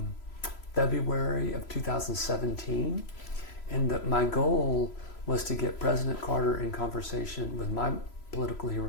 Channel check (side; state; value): right; late; 3.0 ms